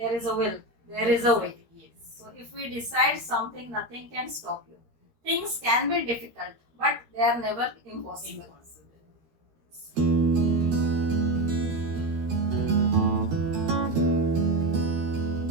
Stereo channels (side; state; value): left; late; 13 ms